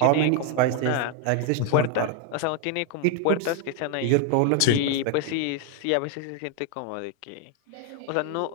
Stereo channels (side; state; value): both; different; correlation 0.00